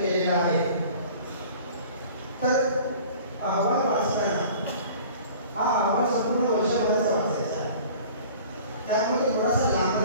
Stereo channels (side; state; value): both; inverted; correlation -0.46